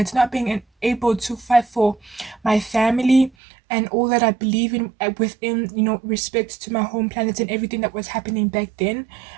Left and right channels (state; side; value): drops out; left; at 3.3 s